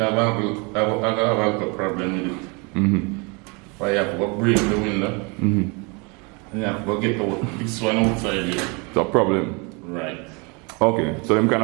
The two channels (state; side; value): quieter; left; 30.8 dB